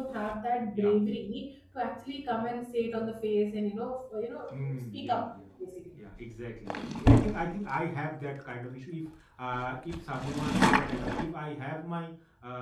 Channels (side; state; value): both; identical; correlation 1.00